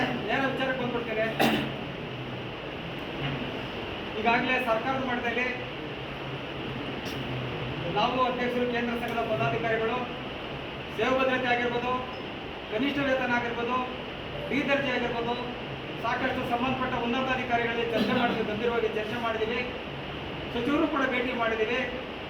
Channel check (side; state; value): both; identical; correlation 1.00